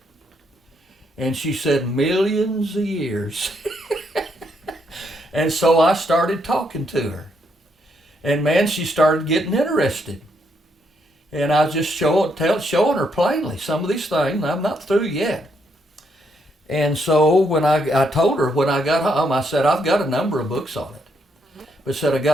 And she said, "Millions of years." And so I started talking to her. And man, she started getting interested. And I was just showing her plainly some of these things. I'm not through yet. And so when I told her when I got home, I said, "I've got a number of books on it. But I said, I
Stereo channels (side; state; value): both; normal; correlation 0.76